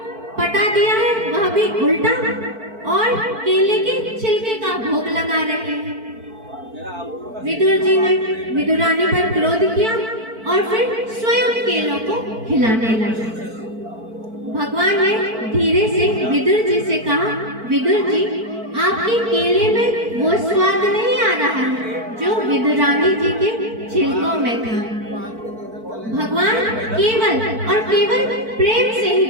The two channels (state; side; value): late; left; 4.5 ms